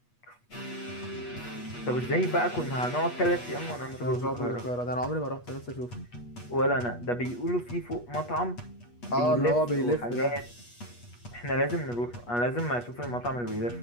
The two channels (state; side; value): late; right; 8.3 ms